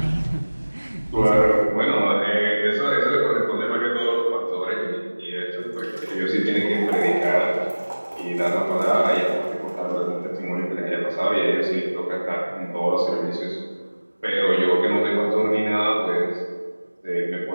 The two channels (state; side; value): inverted; both; correlation -1.00